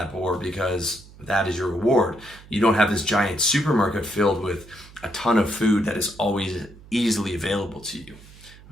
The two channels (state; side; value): noise; right; hum, 21 dB below the sound